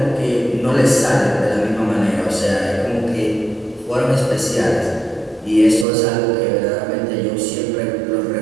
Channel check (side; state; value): left; drops out; at 5.9 s